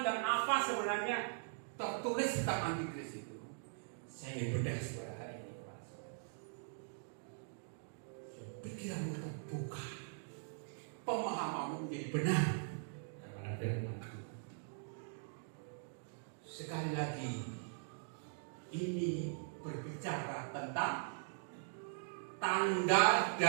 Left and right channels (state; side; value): silent; left; digital silence